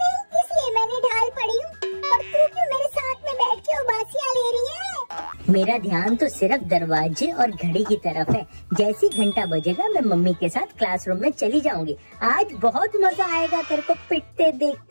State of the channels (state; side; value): inverted; both; correlation -1.00